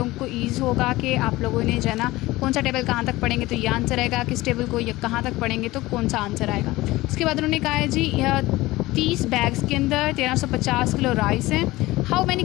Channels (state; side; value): quieter; right; 18.8 dB